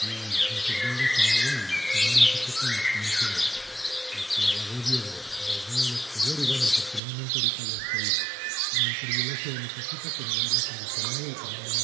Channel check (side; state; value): left; drops out; at 7.0 s